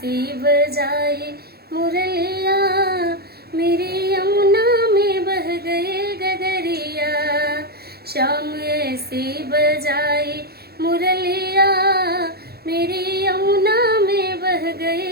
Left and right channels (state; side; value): late; left; 0.46 ms